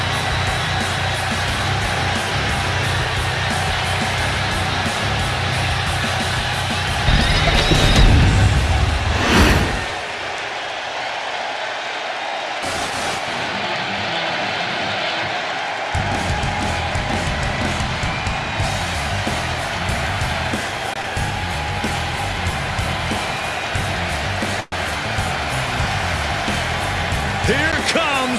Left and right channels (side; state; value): both; identical; correlation 1.00